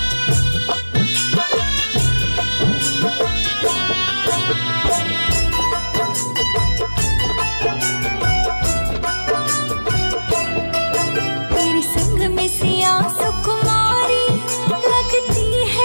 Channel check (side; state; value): both; inverted; correlation -1.00